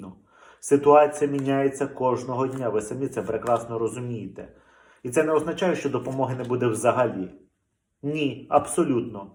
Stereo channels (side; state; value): both; identical; correlation 1.00